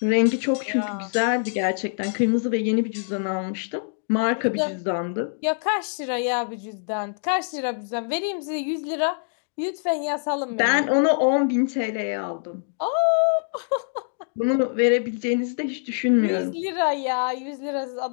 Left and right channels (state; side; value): silent; right; 62 dB below the other